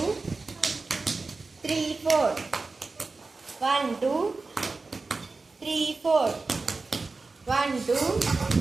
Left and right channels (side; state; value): left; quieter; 3.8 dB